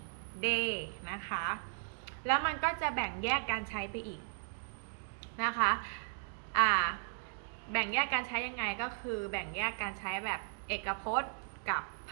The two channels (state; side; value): silent; left; digital silence